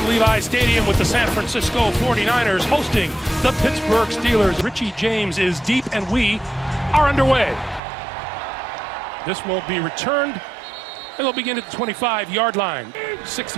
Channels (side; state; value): left; drops out; at 7.8 s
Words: Levi Stadium with the San Francisco 49ers hosting the Pittsburgh Steelers. Richie James is deep and we are underway. This will be returned and they'll begin at the 25-yard line.